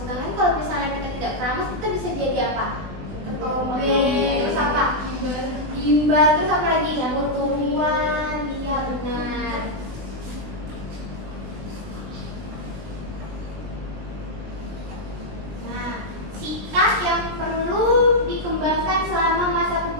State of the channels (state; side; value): late; left; 20 ms